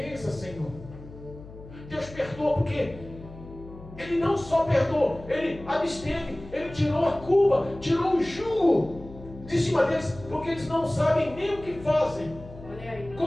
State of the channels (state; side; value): noise; left; hum, 16 dB below the sound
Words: Senhor. Deus perdoa porque Ele não só perdoou, Ele absteve, Ele tirou a culpa, tirou o jugo de cima deles, porque eles não sabem nem o que fazem. Olha aí.